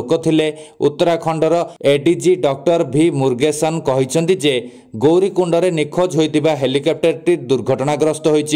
थिले। उत्तराखंडर एडीजी डॉक्टर भी मुरुगेसन कहिसंति जे गौरीकुंड रे निखोज होइतिबा हेलिकॉप्टर टी दुर्घटनाग्रस्त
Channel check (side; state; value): both; identical; correlation 1.00